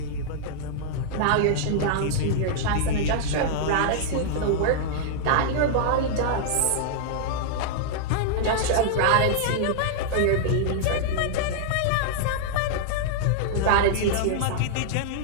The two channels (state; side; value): different; both; correlation -0.01